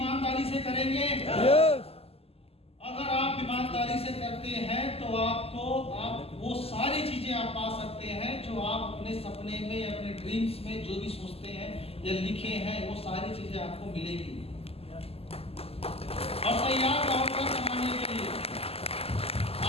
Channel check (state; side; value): late; right; 0.29 ms